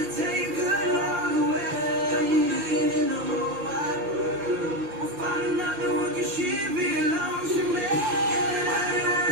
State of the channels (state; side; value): late; left; 6.1 ms